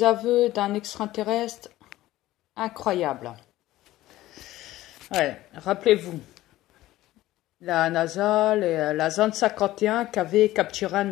aveux d'un extraterrestre incroyable. Ouais, rappelez-vous, la NASA, la zone 51 qui avait capturé un de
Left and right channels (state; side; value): quieter; right; 15.9 dB